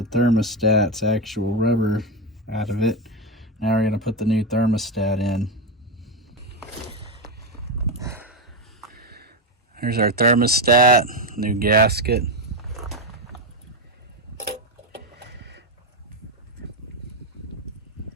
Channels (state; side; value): normal; both; correlation 0.09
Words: thermostat's actual rubber out of it. Now we're going to put the new thermostat in. Here's our thermostat, new gasket.